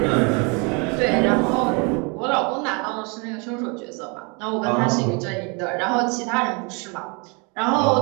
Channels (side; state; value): left; quieter; 32.0 dB